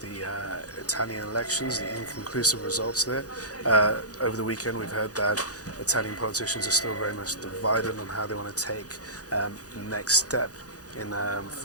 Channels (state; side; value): late; right; 0.67 ms